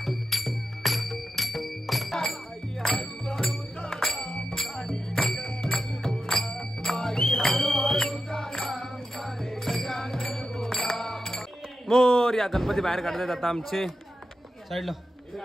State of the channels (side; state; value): both; normal; correlation 0.90